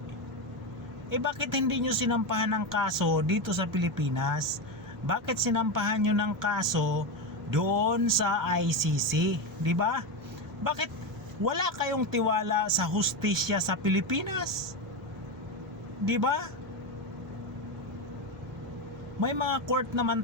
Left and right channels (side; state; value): right; noise; hum, 24 dB below the sound